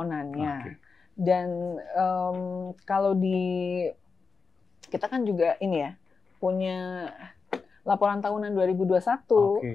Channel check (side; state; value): right; quieter; 4.9 dB